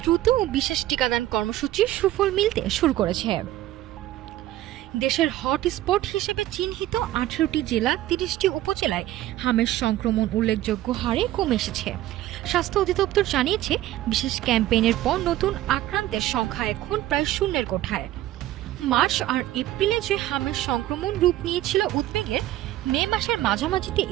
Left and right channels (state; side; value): quieter; left; 14.6 dB